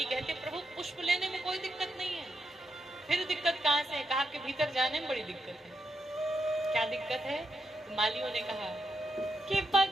कहते, प्रभु पुष्प लेने में कोई दिक्कत नहीं है। फिर दिक्कत कहाँ से है? कहा कि भीतर जाने में बड़ी दिक्कत है। क्या दिक्कत है? तो मालियों ने कहा कि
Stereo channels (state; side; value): normal; both; correlation 0.84